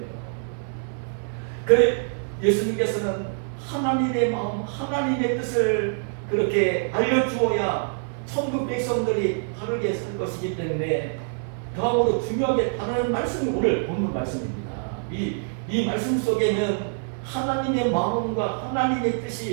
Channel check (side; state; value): left; silent; 62 dB below the other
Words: 그래 예수님께서는 하나님의 마음, 하나님의 뜻을 그렇게 알려주어야 천국 백성들이 바르게 살 것이기 때문에 다음으로 중요하게 다루는 말씀이 오늘 본문 말씀입니다. 이 말씀 속에는 하나님의 마음과 하나님의